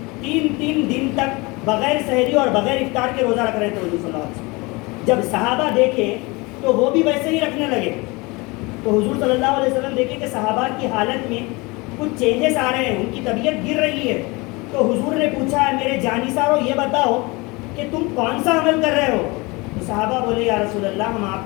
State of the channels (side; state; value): right; quieter; 25.4 dB